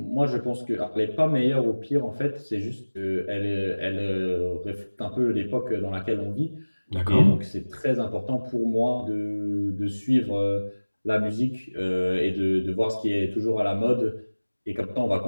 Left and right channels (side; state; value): both; inverted; correlation -1.00